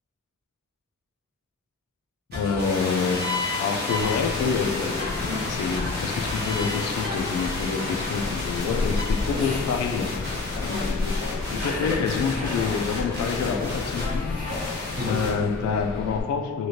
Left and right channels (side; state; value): right; quieter; 4.2 dB